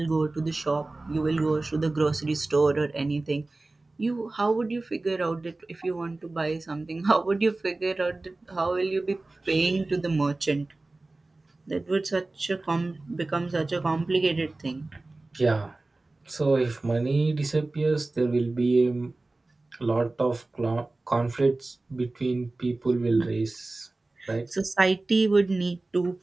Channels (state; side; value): quieter; left; 3.1 dB